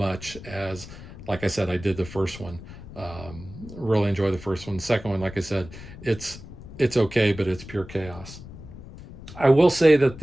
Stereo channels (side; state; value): left; noise; rumble, 15 dB below the sound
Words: as, like I said, I did the first one. Really enjoy the first one. The second one, like I said, it's okay, but it's pure chaos. I will say that